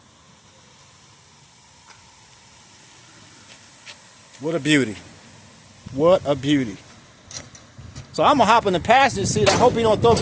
What a beauty. What a beauty. So I'm going to hop in the passenger seat. I hope he don't throw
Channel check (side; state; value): both; identical; correlation 1.00